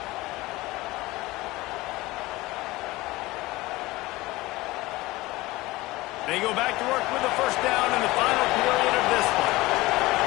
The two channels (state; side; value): quieter; right; 20.0 dB